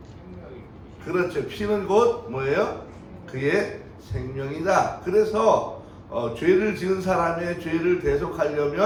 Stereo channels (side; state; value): both; identical; correlation 1.00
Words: 그렇죠. 피는 곧 뭐예요? 그의 생명이다. 그래서 죄를 지은 사람의 죄를